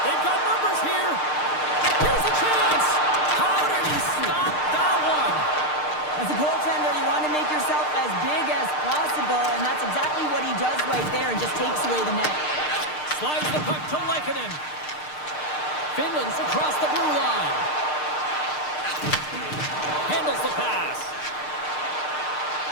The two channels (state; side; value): late; right; 6.6 ms